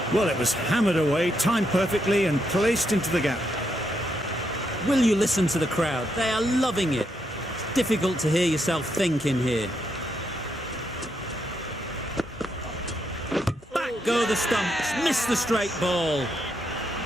Well, it was hammered away, timed perfectly and placed into the gap. Will you listen to the crowd? They are loving it. It's difficult to hear yourself think in here. Back go the stumps, miss the straight ball.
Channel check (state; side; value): normal; both; correlation 0.79